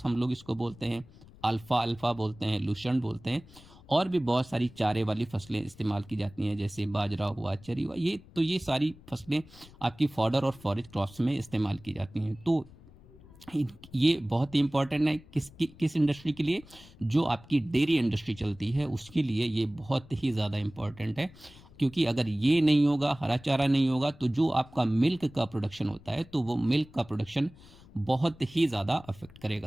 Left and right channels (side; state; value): left; noise; rumble, 22 dB below the sound